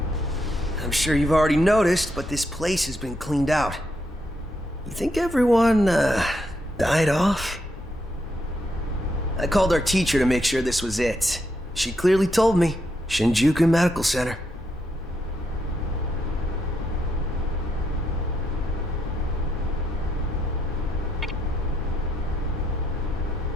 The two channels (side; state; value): both; normal; correlation 0.79